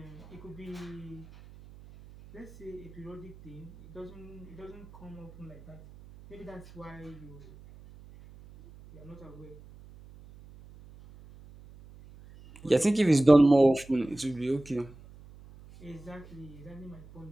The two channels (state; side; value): noise; right; hum, 20 dB below the sound